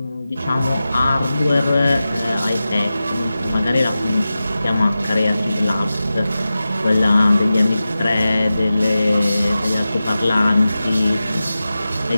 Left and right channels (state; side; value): inverted; both; correlation -0.94